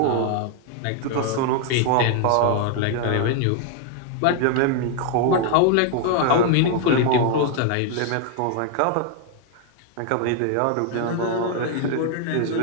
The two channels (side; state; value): both; different; correlation 0.00